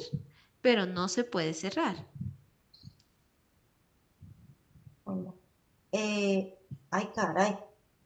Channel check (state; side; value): identical; both; correlation 1.00